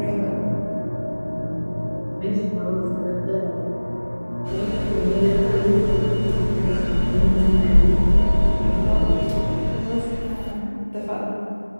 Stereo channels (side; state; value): both; inverted; correlation -1.00